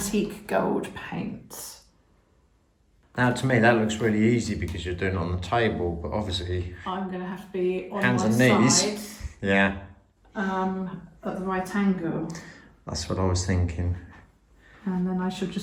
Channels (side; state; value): both; identical; correlation 1.00